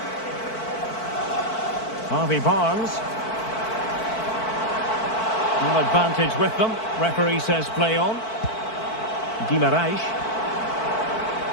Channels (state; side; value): late; right; 4.5 ms